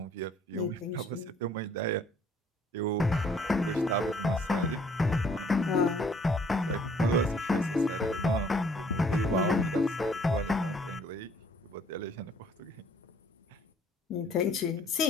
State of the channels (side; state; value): both; normal; correlation 0.60